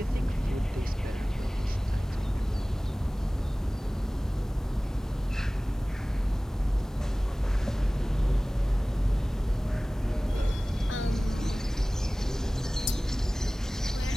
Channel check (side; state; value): both; normal; correlation 0.98